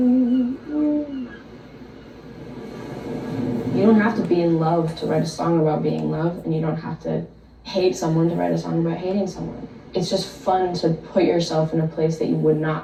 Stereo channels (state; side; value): identical; both; correlation 1.00